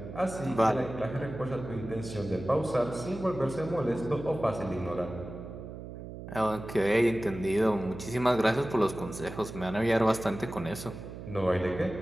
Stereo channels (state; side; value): noise; right; hum, 11 dB below the sound